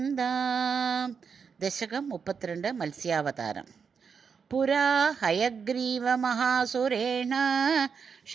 ദശകം 32. മത്സ്യാവതാരം. പുരാ ഹയഗ്രീവമഹാസുരേണ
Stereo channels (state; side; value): quieter; left; 6.1 dB